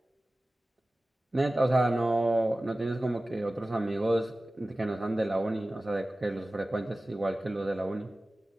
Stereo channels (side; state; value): both; normal; correlation 0.97